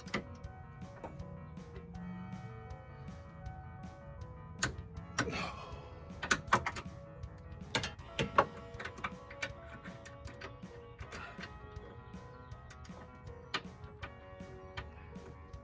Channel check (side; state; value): both; identical; correlation 1.00